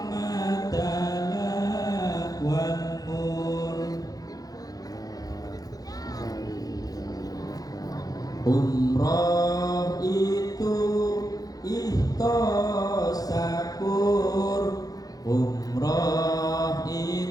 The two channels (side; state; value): right; late; 0.18 ms